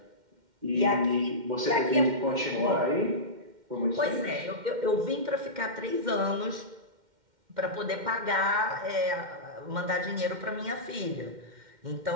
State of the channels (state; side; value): late; left; 2.1 ms